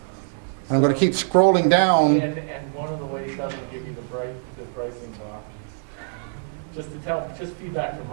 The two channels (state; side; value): silent; left; digital silence